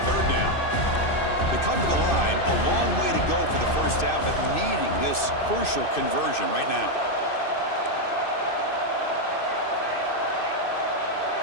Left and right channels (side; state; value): right; late; 2.6 ms